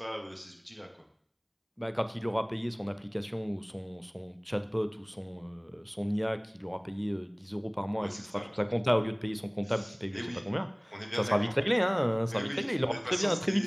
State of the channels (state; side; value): identical; both; correlation 1.00